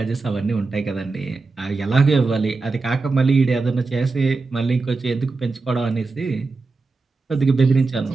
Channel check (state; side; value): quieter; left; 3.9 dB